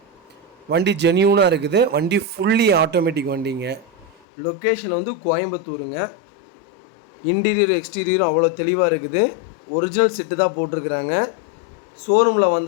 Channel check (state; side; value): drops out; right; at 4.2 s